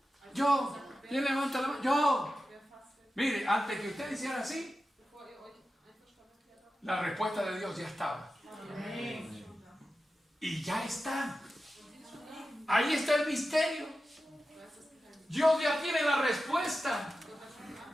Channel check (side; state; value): both; normal; correlation 0.93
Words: Yo. ¿Quién levanta la mano? Yo. Mire, antes que usted hiciera así, la respuesta de Dios ya estaba. Y ya está. Ahí está el misterio. Dios ya tiene la respuesta.